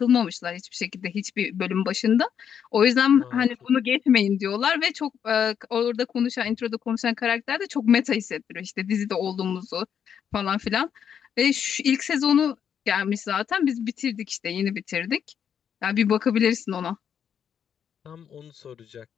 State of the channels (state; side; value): quieter; right; 8.2 dB